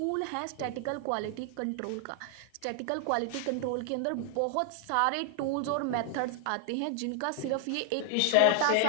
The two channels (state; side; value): different; both; correlation 0.00